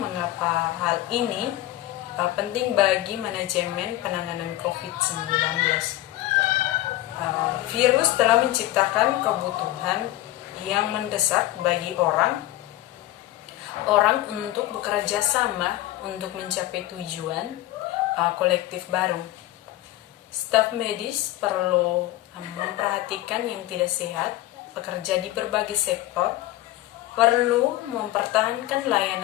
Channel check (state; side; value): quieter; right; 16.0 dB